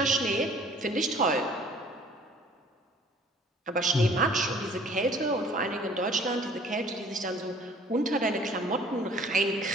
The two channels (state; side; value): normal; both; correlation 0.53